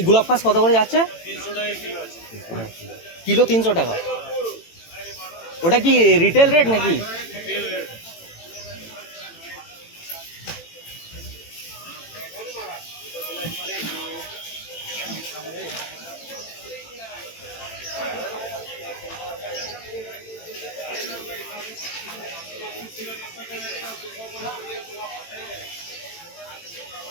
গোলাপ খাস কত করে যাচ্ছে? 300 টাকা কিলো। 300 টাকা। ওটা কি রিটেল রেট নাকি?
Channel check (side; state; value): right; late; 18 ms